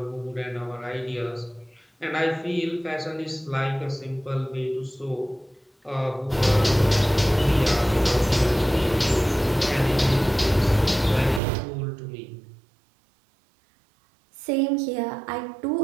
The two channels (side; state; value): left; drops out; at 11.4 s